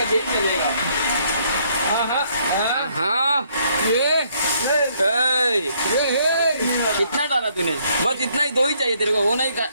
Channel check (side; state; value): both; inverted; correlation -0.68